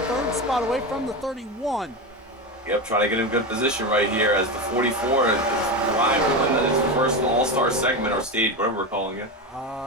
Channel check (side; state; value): both; normal; correlation 0.18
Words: 3rd spot away from the 31. Yep, trying to get in good position right here as the 44 is arriving in his first All-Star segment or stage, whatever we're calling it.